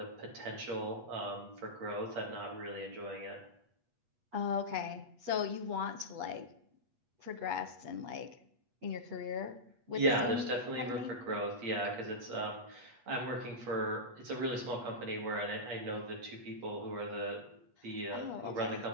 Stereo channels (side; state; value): left; late; 8.3 ms